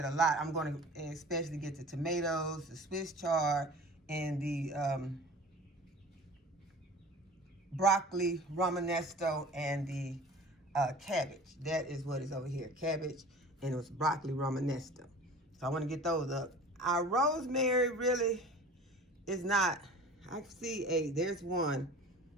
a lot. I'm going to especially get the tomatoes, the Swiss chard, and the broccoli romanesco, and the cabbage. That is what is over here. Cabbage, and it was broccoli romanesco. So I want to get those up. Our rosemary really is not. I see there's one.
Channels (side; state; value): both; normal; correlation 0.42